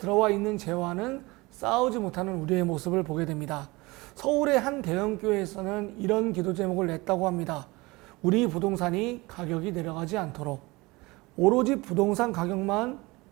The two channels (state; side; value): quieter; left; 22.9 dB